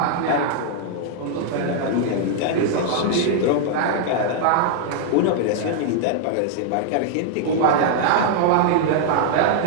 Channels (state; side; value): different; both; correlation -0.01